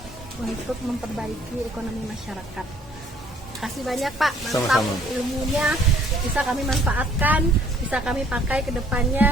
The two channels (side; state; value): both; normal; correlation 0.60